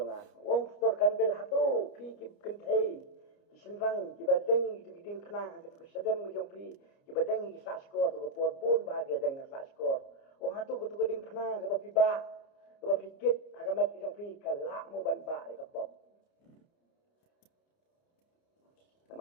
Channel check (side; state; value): right; late; 29 ms